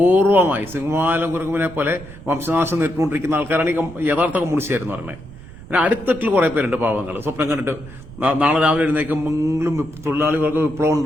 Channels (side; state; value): right; noise; rumble, 17 dB below the sound